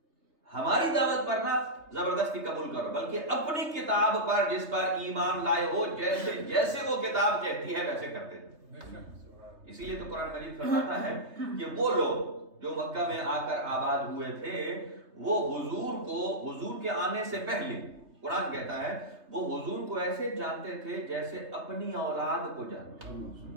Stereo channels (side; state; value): left; late; 3.3 ms